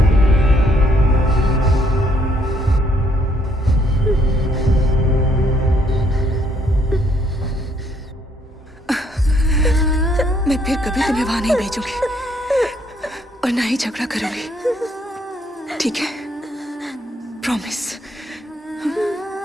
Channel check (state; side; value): normal; both; correlation 0.69